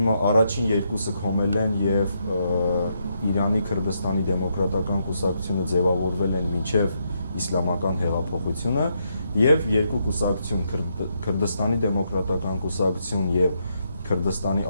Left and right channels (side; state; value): both; inverted; correlation -0.78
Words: երկուսը քոմել են եւ Իրանի Քրդստանի դեմոկրատական կուսակցությունը ձևավորվել են մինչեւ իսլամական հեղափոխությունը եւ երկու կուսակցություն Քրդստանի դեմոկրատական կուսակցություն եւ Քրդստանի